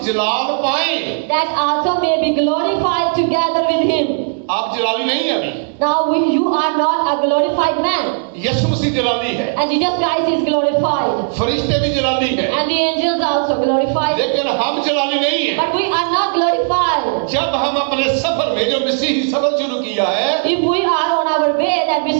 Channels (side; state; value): left; silent; digital silence